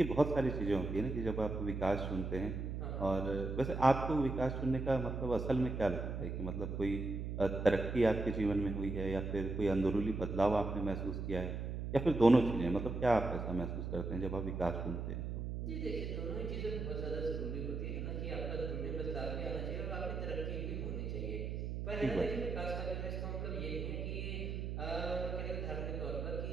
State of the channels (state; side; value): noise; right; hum, 4 dB below the sound